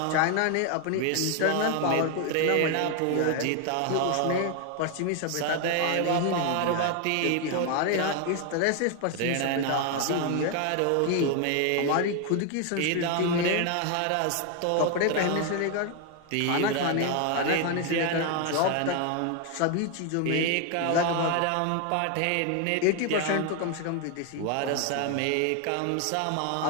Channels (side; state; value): both; different; correlation 0.01